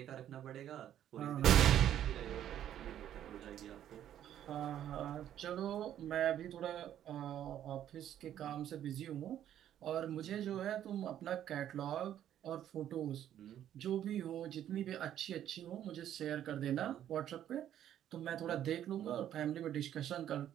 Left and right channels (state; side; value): quieter; left; 11.0 dB